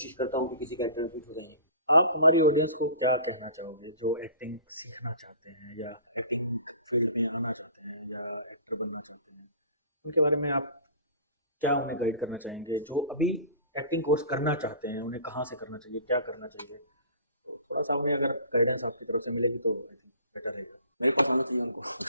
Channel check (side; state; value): both; inverted; correlation -0.45